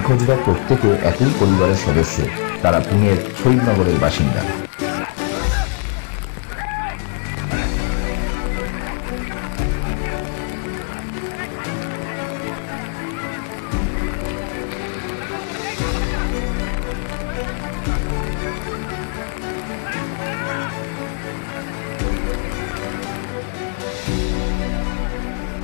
প্রত্যেকে একই পরিবারের সদস্য। তারা পুনের শহীদনগরের বাসিন্দা।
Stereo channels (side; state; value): right; quieter; 39.9 dB